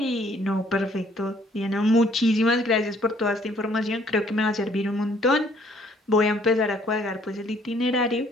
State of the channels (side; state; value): both; normal; correlation 0.62